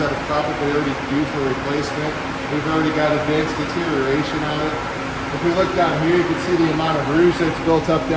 that are probably already due for replacement. We've already got advanced deterioration on it. If we look down here, you can see the amount of rouge that's built up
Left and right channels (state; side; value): identical; both; correlation 1.00